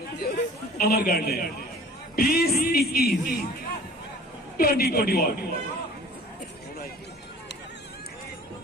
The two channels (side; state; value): both; normal; correlation 0.47